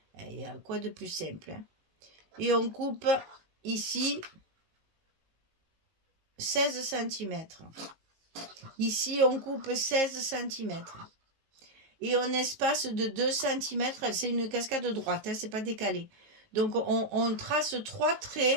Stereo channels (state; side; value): late; left; 19 ms